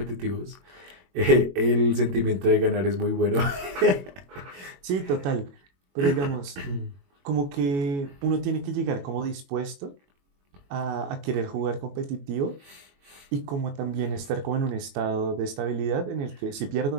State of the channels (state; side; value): late; left; 21 ms